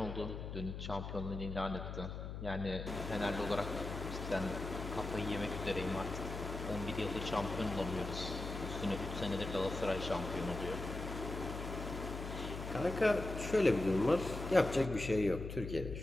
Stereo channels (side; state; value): left; noise; hum, 7 dB below the sound